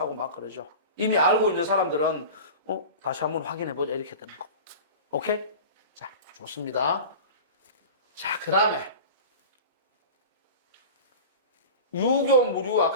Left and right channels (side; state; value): both; inverted; correlation -0.34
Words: 막 그러죠. 이미 알고 있는 사람들은 다시 한번 확인해보자 이렇게 되는 거고. 오케이? 자, 좋습니다. 자, 그 다음에 유교, 무료